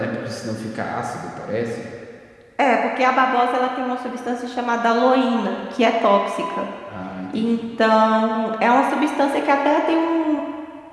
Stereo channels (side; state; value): both; identical; correlation 1.00